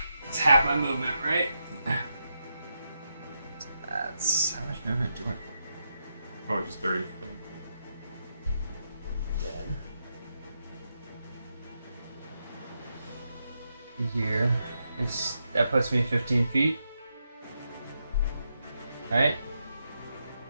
It's half my movement, right? That's how much movement do I? Probably just 30. Here, that puts me 15 feet. Right?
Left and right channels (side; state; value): both; inverted; correlation -0.84